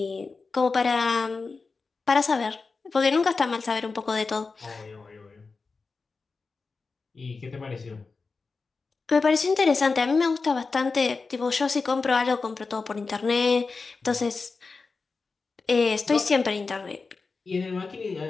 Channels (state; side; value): quieter; right; 4.3 dB